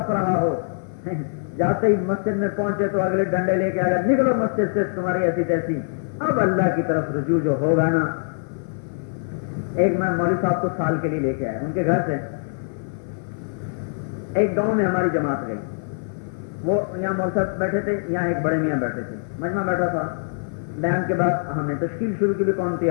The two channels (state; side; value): silent; right; 55 dB below the other